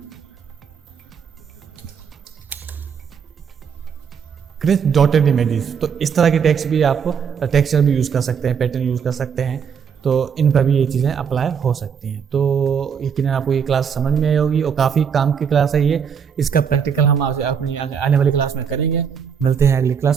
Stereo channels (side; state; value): left; quieter; 7.1 dB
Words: cringe dotted images. तो इस तरह के टेक्स्ट भी आपको टेक्सचर भी यूज़ कर सकते हैं, पैटर्न यूज़ कर सकते हैं। तो इन पर भी ये चीज़ें अप्लाई हो सकती हैं। तो यकीनन आपको ये क्लास समझ में आई होगी और काफ़ी काम की क्लास है ये। इसका प्रैक्टिकल हम अपनी आने वाली क्लास में करेंगे। मिलते हैं अगली